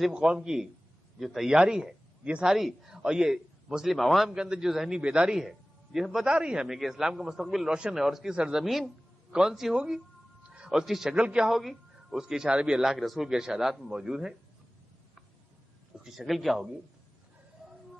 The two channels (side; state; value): both; normal; correlation 0.98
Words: قوم کی جو تیاری ہے یہ ساری، اور یہ مسلم عوام کے اندر جو ذہنی بیداری ہے یہ بتا رہی ہے ہمیں کہ اسلام کا مستقبل روشن ہے. اور اس کی سرزمین کون سی ہوگی اور اس کی شکل کیا ہوگی، اس کے اشارے بھی اللہ کے رسول کے ارشادات میں موجود ہیں. اس کی شکل کیا ہوگی؟